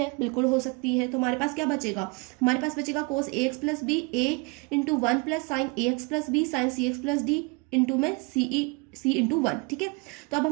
बिल्कुल हो सकती है, तो हमारे पास क्या बचेगा, हमारे पास बचेगा कोस a x plus B A into 1 plus sign A x plus B sign C x plus D into में सी इंटू 1। ठीक है, तो अब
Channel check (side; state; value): left; quieter; 29.2 dB